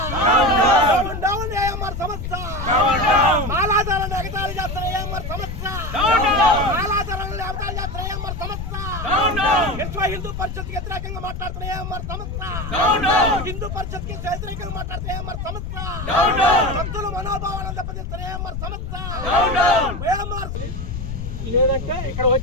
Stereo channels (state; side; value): noise; left; rumble, 6 dB below the sound